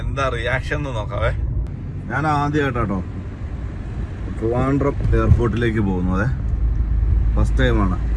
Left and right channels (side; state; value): both; identical; correlation 1.00